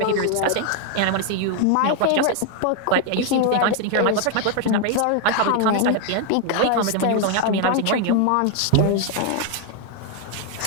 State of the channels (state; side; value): different; both; correlation 0.00